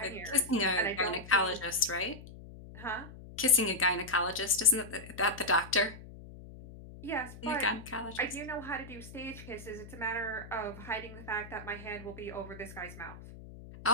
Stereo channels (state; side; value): noise; left; hum, 15 dB below the sound